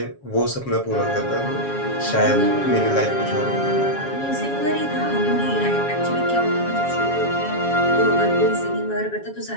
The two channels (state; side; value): late; right; 7.3 ms